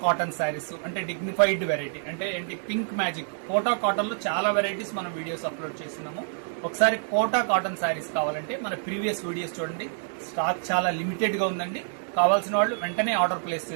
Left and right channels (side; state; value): left; silent; digital silence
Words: cotton saris అంటే డిగ్నిఫైడ్ వెరైటీ అంటే ఏంటి పింక్ మ్యాజిక్ కోటా కాటన్ లో చాలా వెరైటీస్ మనం వీడియోస్ అప్లోడ్ చేస్తున్నాము. ఒకసారి కోటా కాటన్ శారీస్ కావాలంటే మన ప్రీవియస్ వీడియోస్ చూడండి. స్టాక్ చాలా లిమిటెడ్ గా ఉందండి. కావాల్సిన వాళ్ళు వెంటనే ఆర్డర్ ప్లేస్